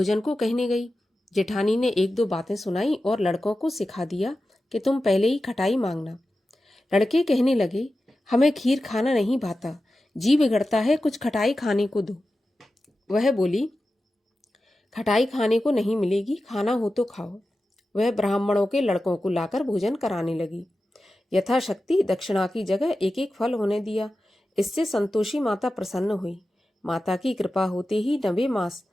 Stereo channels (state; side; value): normal; both; correlation 0.93